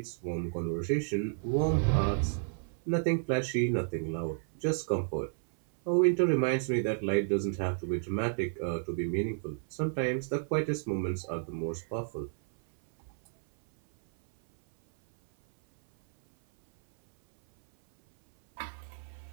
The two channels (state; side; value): silent; left; 57 dB below the other